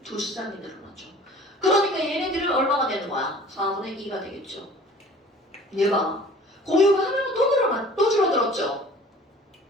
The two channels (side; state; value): both; normal; correlation 0.48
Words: 2쌍이 늘어나죠. 그러니까 얘네들은 얼마가 되는 거야? 4분의 2가 되겠죠. 얘가 공유가 하나가 또 줄어들었죠.